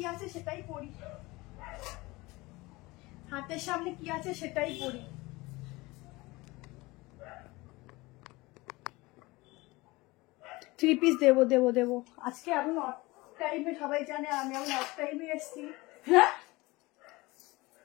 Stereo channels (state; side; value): quieter; right; 22.0 dB